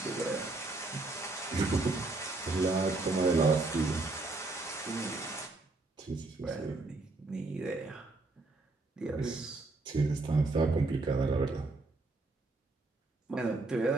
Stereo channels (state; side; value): quieter; left; 3.3 dB